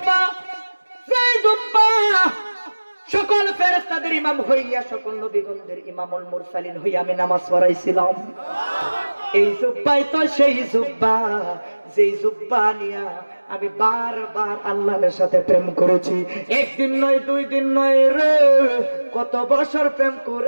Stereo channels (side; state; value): both; inverted; correlation -1.00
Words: যেই জুব্বা সকল ফেরেশতাদের ইমাম হইয়া সকল নবীগণদের ইমামুল মুরসালিন হইয়া আমি নামাজ পড়াইছিলাম। এই জুব্বাই তো সেই জুব্বা, যেই জুব্বা নিয়া আমি বারবার আল্লাহর সাথে প্রেম করেছি। একদিন নয়, 2 দিন নয় রে, কত বছর প্রেম